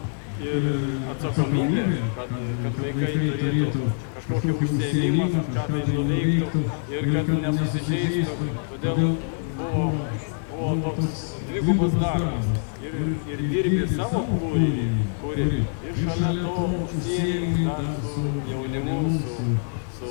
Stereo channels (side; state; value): right; silent; 62 dB below the other